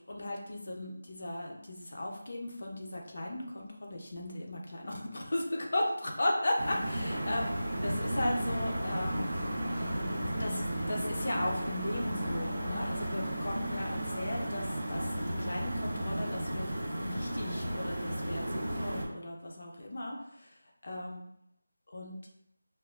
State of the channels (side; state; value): both; inverted; correlation -0.95